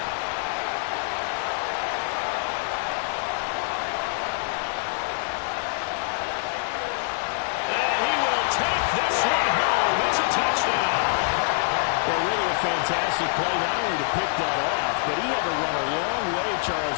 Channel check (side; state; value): right; silent; 62 dB below the other